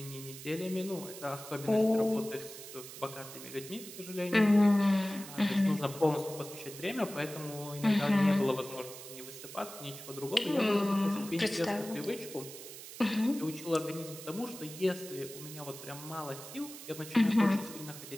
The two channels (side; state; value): right; noise; hiss, 13 dB below the sound